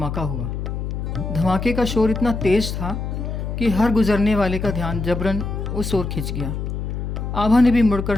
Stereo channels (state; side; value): noise; left; hum, 4 dB below the sound